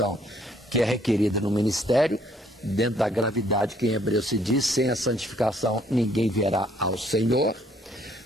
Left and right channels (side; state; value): both; normal; correlation 0.64